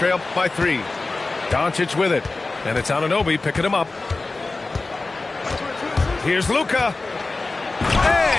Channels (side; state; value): right; quieter; 3.4 dB